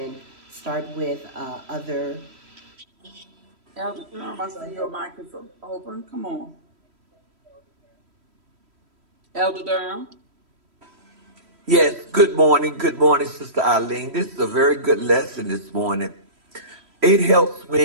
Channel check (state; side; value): late; left; 3.1 ms